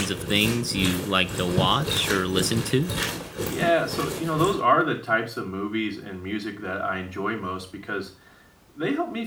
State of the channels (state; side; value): identical; both; correlation 1.00